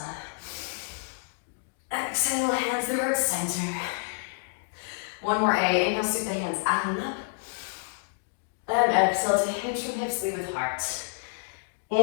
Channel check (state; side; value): silent; right; digital silence